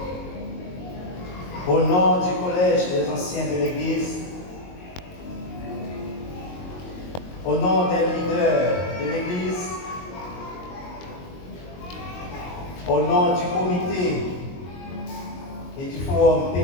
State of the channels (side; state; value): right; late; 22 ms